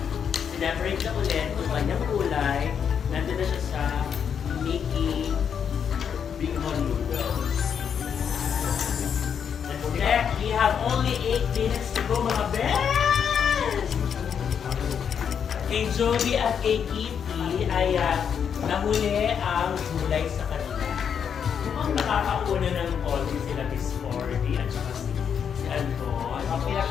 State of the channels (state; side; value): quieter; right; 7.6 dB